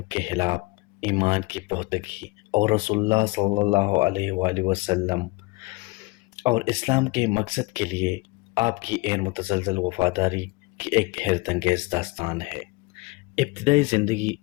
کے خلاف ایمان کی پختگی اور رسول اللہ صلی اللہ علیہ وآلہ وسلم اور اسلام کے مقصد کے لیے آپ کی غیر متزلزل وفاداری کی ایک حیرت انگیز داستان ہے۔ ابتدائی زندگی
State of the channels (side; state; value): right; quieter; 25.1 dB